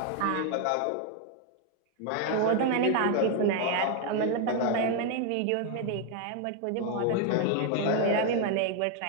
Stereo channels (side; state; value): both; different; correlation 0.01